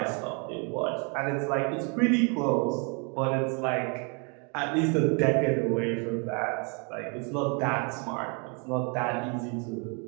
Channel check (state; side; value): quieter; left; 35.4 dB